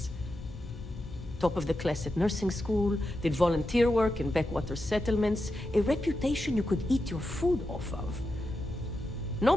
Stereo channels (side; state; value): both; normal; correlation 0.88